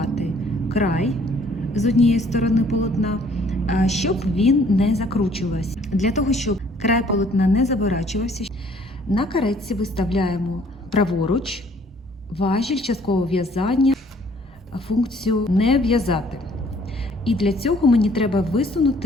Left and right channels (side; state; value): both; normal; correlation 0.59